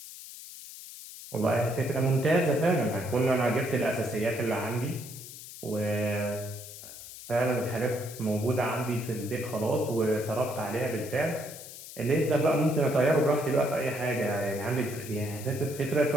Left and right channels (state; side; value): noise; left; hiss, 14 dB below the sound